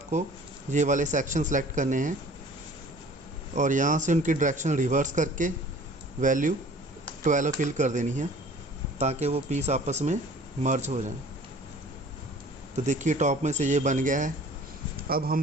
ये वाले सेक्शन सेलेक्ट करने हैं और यहाँ से उनकी डायरेक्शन रिवर्स करके वैल्यू 12 फिल कर देनी है ताकि वो पीस आपस में मर्ज हो जाए। तो देखिए टॉप में से ये बन गया है। अब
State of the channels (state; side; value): normal; both; correlation 0.49